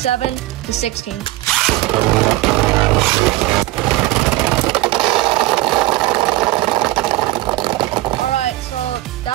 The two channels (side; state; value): left; quieter; 17.4 dB